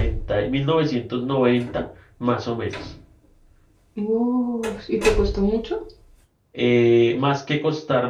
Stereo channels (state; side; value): identical; both; correlation 1.00